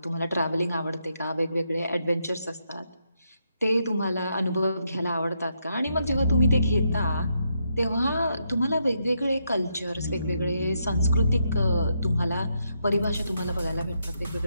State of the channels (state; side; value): inverted; both; correlation -0.79